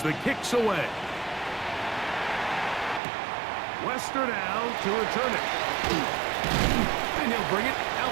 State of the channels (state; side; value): drops out; left; at 3.0 s